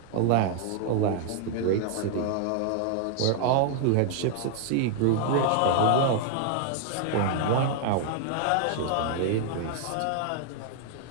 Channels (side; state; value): both; different; correlation 0.00